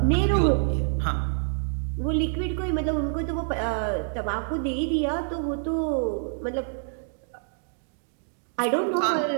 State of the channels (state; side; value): silent; left; digital silence